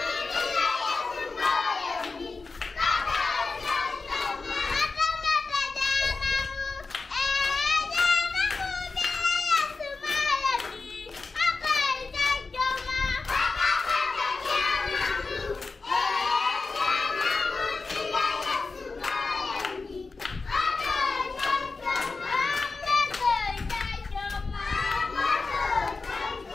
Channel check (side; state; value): right; quieter; 4.0 dB